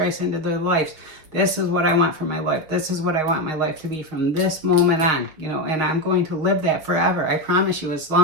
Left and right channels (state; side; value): late; left; 6.6 ms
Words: into their lives. This is what I want for my life. This is what I want my life to be from this moment on, and I'm going to live that forever. I promise you, as